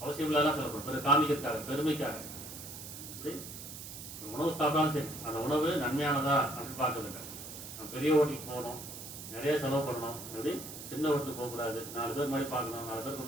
அவசியம் இல்லாதான் செலவு பண்ணுறோம், காமிக்கிறதுக்காக, பெருமைக்காக. இப்படி உணவு சாப்பிட்டாலும் சரி, அந்த உணவு நன்மையானதா அப்படின்னு பார்க்கறதில்லை. நம்ம பெரிய ஹோட்டலுக்கு போகணும், நிறைய செலவு பண்ணணும். எப்படி சின்ன ஹோட்டலுக்கு போகக்கூடாது, 4 பேர் மாதிரி பார்க்கணும், 4 பேருக்கு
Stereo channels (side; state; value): right; noise; hiss, 11 dB below the sound